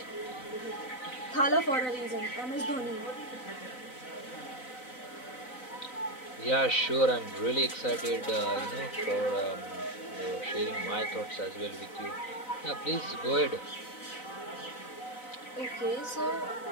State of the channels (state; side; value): late; right; 4.0 ms